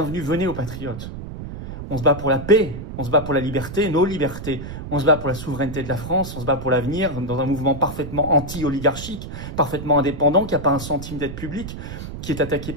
venez aux patriotes. On se bat pour la paix, on se bat pour la liberté, nos libertés. On se bat pour la souveraineté de la France, on se bat pour l'avenir dans un mouvement parfaitement anti-oligarchique, parfaitement indépendant, qui n'a pas un centime d'aide publique, qui est attaqué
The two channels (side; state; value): right; noise; rumble, 9 dB below the sound